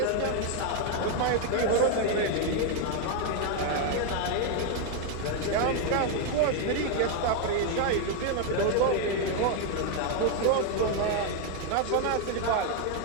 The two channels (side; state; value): both; different; correlation 0.01